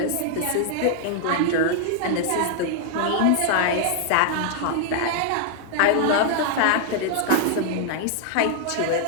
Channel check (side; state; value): both; different; correlation 0.00